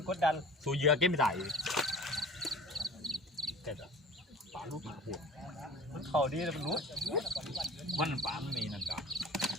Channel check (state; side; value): normal; both; correlation 0.42